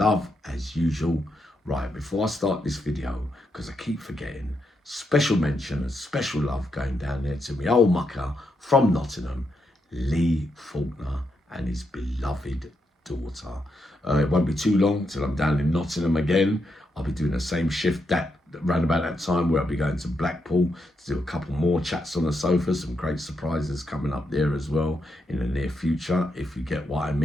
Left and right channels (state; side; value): normal; both; correlation 0.82